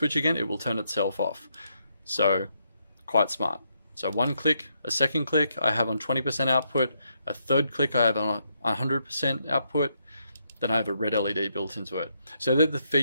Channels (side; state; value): both; inverted; correlation -0.78